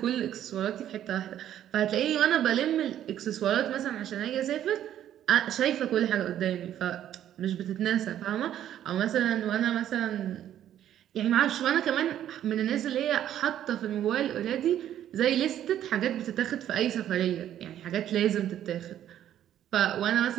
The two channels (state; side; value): quieter; left; 11.2 dB